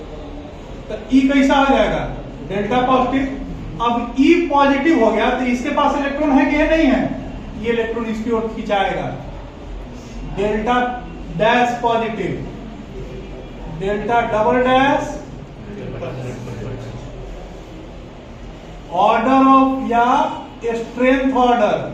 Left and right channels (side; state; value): both; identical; correlation 1.00